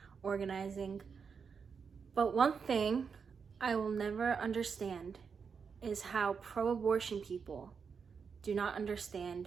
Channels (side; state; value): left; quieter; 6.0 dB